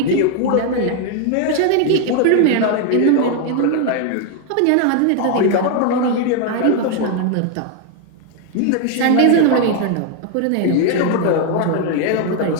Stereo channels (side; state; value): both; different; correlation 0.01